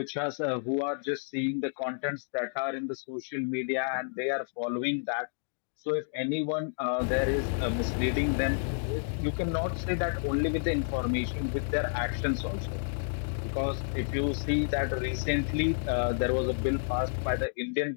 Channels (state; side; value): silent; right; digital silence